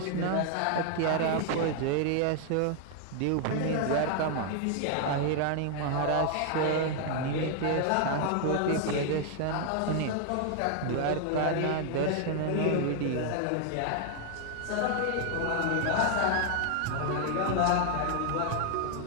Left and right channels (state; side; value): different; both; correlation 0.00